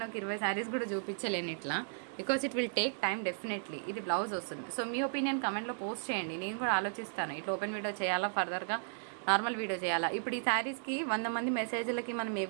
ఒక 20 శారీస్ కూడా చూపించలేను ఇట్లా, because it will take time definitely. ఇది బ్లౌజ్ వస్తుంది. సో మీ ఒపీనియన్ కమెంట్లో పోస్ట్ చేయండి, నేను కూడా ఆలోచిస్తాను ఇట్లా ఓపెన్ వీడియో చేయాలా, ఫర్దర్గా నార్మల్ వీడియో చేయాలా. ఇప్పుడు ఈ శారీస్కి 100 మంది మెసేజ్లకి మనం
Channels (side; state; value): left; silent; digital silence